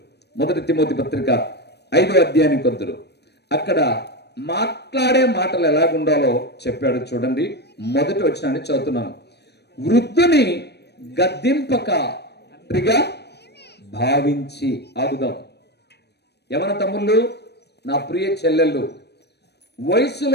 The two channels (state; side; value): late; right; 0.48 ms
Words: 1 తిమోతి పత్రిక 5వ అధ్యాయానికి వద్దురు. అక్కడ మాట్లాడే మాటలు ఎలాగుండాలో చెప్పాడు. చూడండి, మొదటి వచనాన్ని చదువుతున్నాను. వృద్ధుని గద్దింపక తండ్రిగా భావించి. ఆగుదాం. యవన తమ్ముళ్ళు, నా ప్రియ చెల్లెళ్ళు,